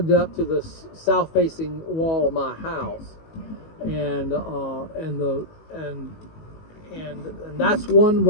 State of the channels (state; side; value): late; right; 19 ms